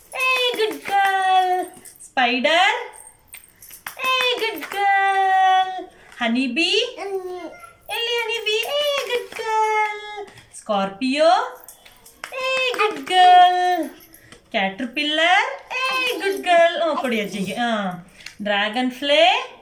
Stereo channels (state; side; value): identical; both; correlation 1.00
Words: A good girl. Spider? A good girl. Honey bee? ಎಲ್ಲಿ honey bee? A good girl. Scorpio? A good girl. Caterpillar? A good girl. ಕೊಡಿ ಅಜ್ಜಿಗೆ. Dragon fly?